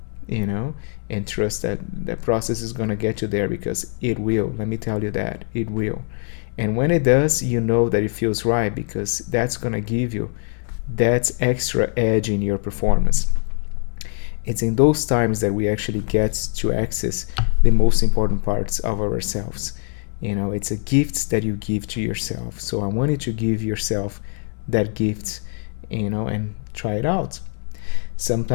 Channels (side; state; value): right; silent; 55 dB below the other